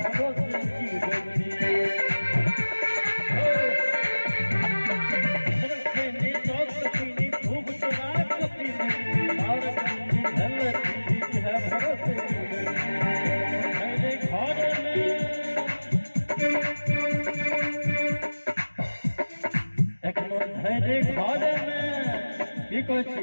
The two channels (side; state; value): both; inverted; correlation -1.00